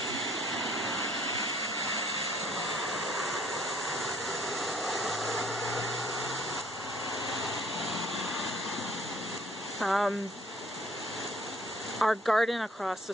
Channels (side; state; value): both; normal; correlation 0.58